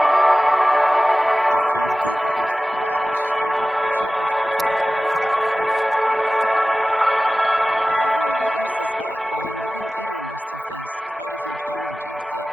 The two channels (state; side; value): normal; both; correlation 0.97